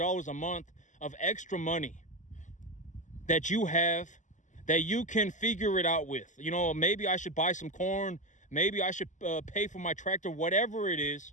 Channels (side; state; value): right; late; 0.36 ms